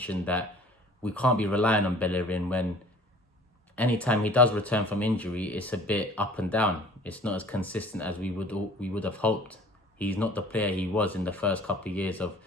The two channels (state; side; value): normal; both; correlation 0.48